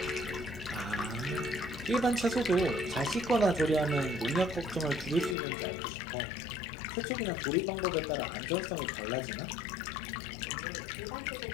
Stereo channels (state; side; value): drops out; right; at 5.4 s